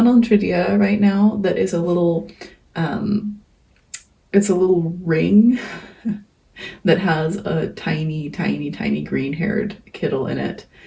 on Tradia right now that is it's a little ring that has a tiny, tiny, tiny green haired kiddle in it.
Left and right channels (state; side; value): identical; both; correlation 1.00